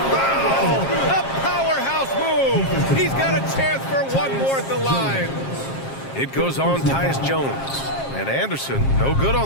foul! A powerhouse move! He's got a chance for one more at the line. It goes on Tyus Jones. And Anderson, no good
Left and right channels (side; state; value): right; late; 7.5 ms